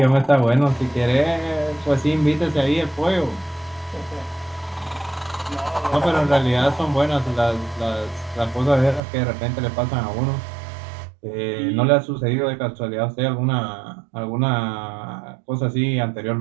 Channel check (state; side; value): drops out; left; at 9.0 s